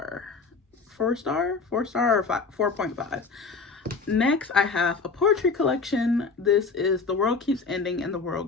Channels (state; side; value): quieter; right; 4.5 dB